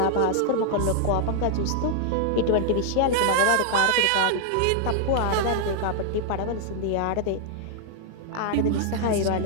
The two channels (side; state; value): both; different; correlation -0.01